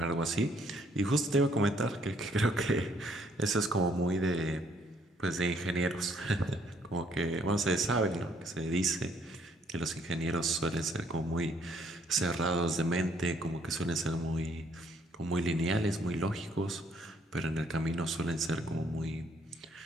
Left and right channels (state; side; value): normal; both; correlation 0.66